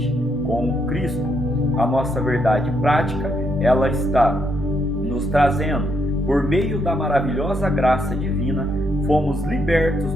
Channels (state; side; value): normal; both; correlation 0.76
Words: com Cristo. A nossa verdade prática, ela está nos trazendo, por meio da maravilhosa graça divina, fomos libertos